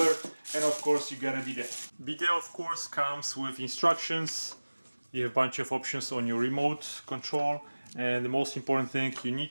and of course you got a bidet. Bidet of course comes with instructions. You have a bunch of options on your remote control, and the most important thing, you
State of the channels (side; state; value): both; inverted; correlation -1.00